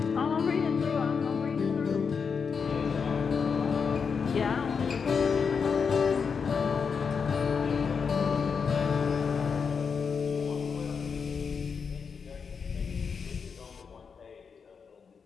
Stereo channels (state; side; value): quieter; right; 5.9 dB